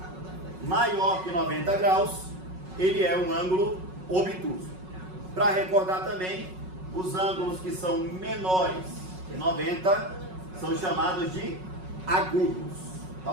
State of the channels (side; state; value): left; late; 5.4 ms